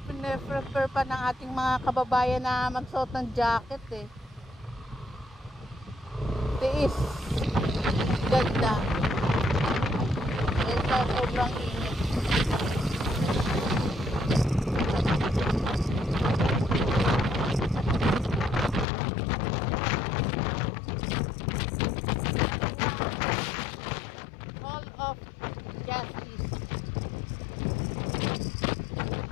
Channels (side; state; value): right; drops out; at 18.9 s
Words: prefer pa ng ating mga kababayan na magsuot ng jacket eh. Tiis. Ganda. Ito sobrang init.